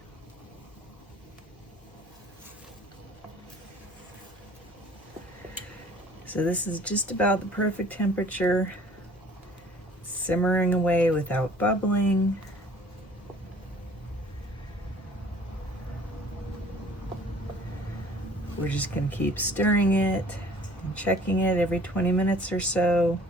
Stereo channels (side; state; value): both; normal; correlation 0.52